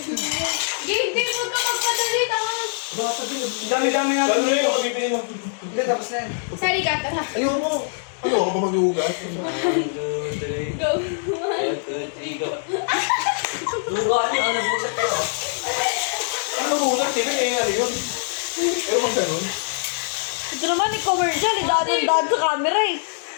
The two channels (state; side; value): silent; right; digital silence